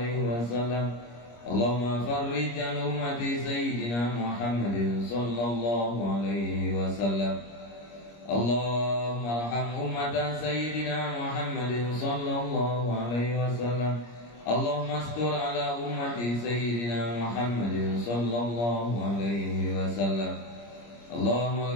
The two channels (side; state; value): right; late; 25 ms